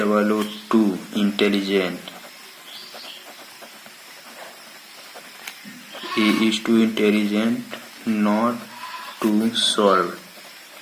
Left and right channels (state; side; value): identical; both; correlation 1.00